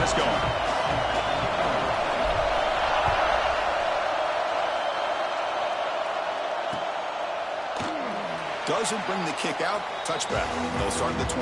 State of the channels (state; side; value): identical; both; correlation 1.00